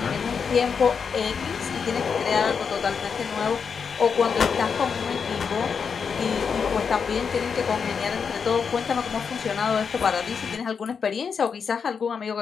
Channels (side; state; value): right; quieter; 6.1 dB